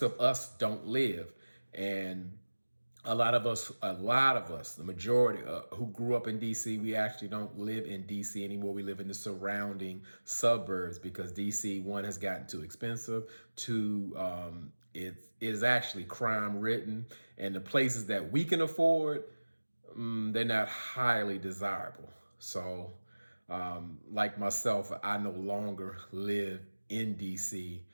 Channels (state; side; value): inverted; both; correlation -1.00